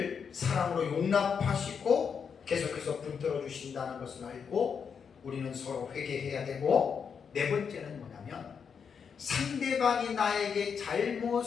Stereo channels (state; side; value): quieter; right; 6.6 dB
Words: 사랑으로 용납하시고 계속해서 붙들어 주신다는 것을 알고 우리는 서로 회개해야 되고, 네 번째는 뭐냐면 상대방이 나에게